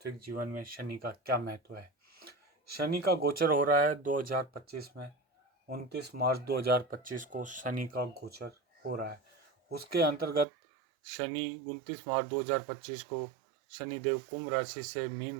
जीवन में शनि का क्या महत्व है। शनि का गोचर हो रहा है 2025 में। 29 मार्च 2025 को शनि का गोचर हो रहा है। उसके अंतर्गत शनि 29 मार्च 2025 को शनिदेव कुंभ राशि से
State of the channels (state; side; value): drops out; left; at 10.5 s